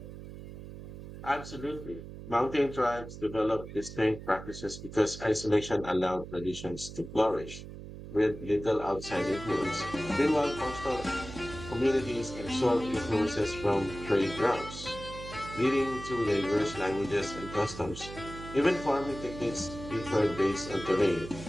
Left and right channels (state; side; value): noise; right; hum, 12 dB below the sound